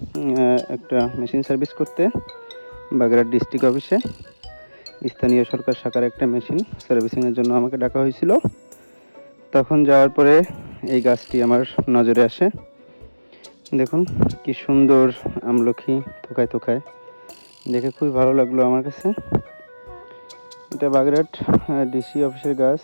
একটা মেশিন সার্ভিস করতে বাগেরহাট ডিস্ট্রিক্ট অফিসে। স্থানীয় সরকার শাখার একটা মেশিন সার্ভিসিংয়ের জন্য আমাকে ডাকা হয়েছিল। তখন যাওয়ার পরে এই গাছটি আমার নজরে আসে। দেখুন কি সুন্দর আমলকি থোকায় থোকায়, দেখে খুবই ভালো লাগলো আমার কাছে। এটা বাগেরহাট ডিসি অফিসের গাছ।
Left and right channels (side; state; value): both; inverted; correlation -1.00